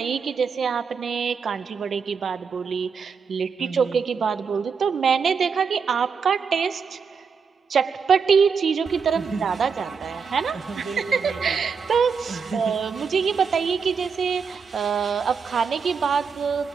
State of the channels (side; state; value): left; quieter; 5.9 dB